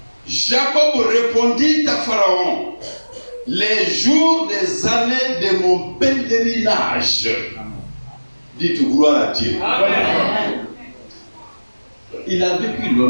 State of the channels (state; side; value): inverted; both; correlation -1.00